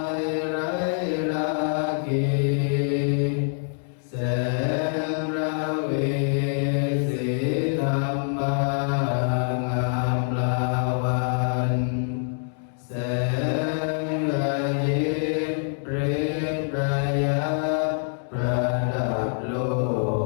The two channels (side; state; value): right; silent; digital silence